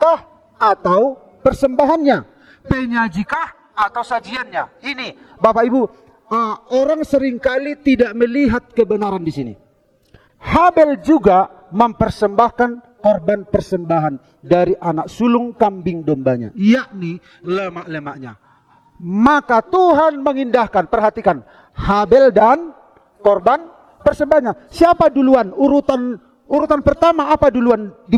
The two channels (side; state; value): both; identical; correlation 1.00